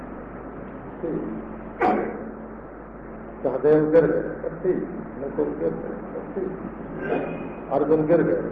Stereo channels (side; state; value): both; identical; correlation 1.00